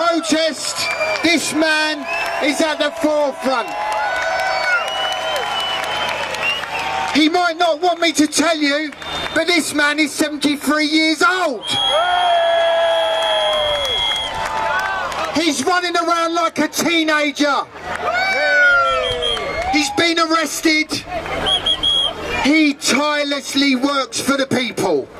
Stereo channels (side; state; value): both; identical; correlation 1.00